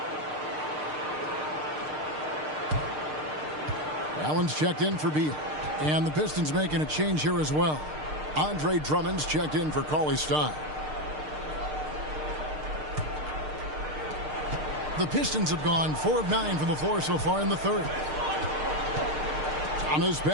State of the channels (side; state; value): left; late; 6.6 ms